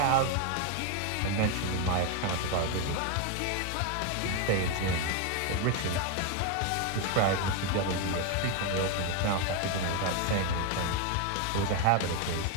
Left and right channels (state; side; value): different; both; correlation 0.02